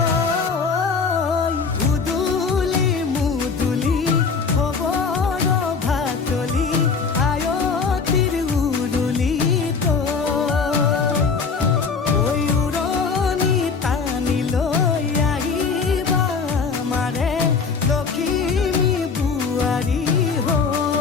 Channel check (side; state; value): right; quieter; 5.2 dB